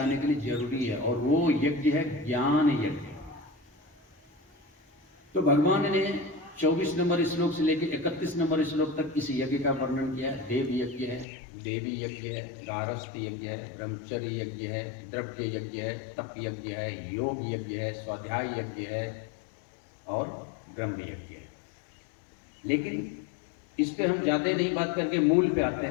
के लिए जरूरी है। और वो यज्ञ है ज्ञान यज्ञ। तो भगवान ने 24 नंबर श्लोक से लेकर 31 नंबर श्लोक तक इस यज्ञ का वर्णन किया है। देव यज्ञ है, देवी यज्ञ है, गारस्थ यज्ञ है, ब्रह्मचर्य यज्ञ है, द्रव्य यज्ञ है, तप यज्ञ है, योग यज्ञ है, स्वाध्याय यज्ञ है और ब्रह्म यज्ञ है। लेकिन इस पे हम ज्यादा नहीं बात करके मूल पे आते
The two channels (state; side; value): drops out; right; at 11.2 s